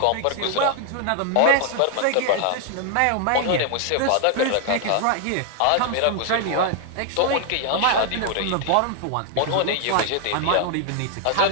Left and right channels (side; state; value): both; different; correlation 0.00